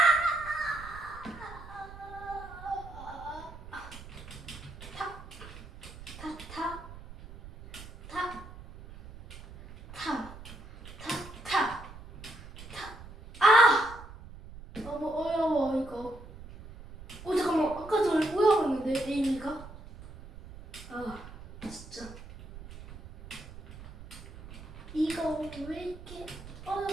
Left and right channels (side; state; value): right; noise; rumble, 15 dB below the sound